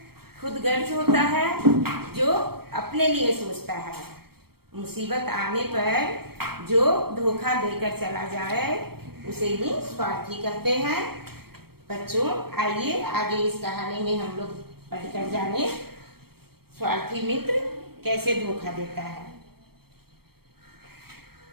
खुदगर्ज होता है, जो अपने लिए सोचता है। मुसीबत आने पर जो धोखा देकर चला जाए उसे ही स्वार्थी कहते हैं। बच्चों आइए आगे इस कहानी में हम लोग पढ़कर जाने स्वार्थी मित्र कैसे धोखा देता है।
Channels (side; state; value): left; late; 0.95 ms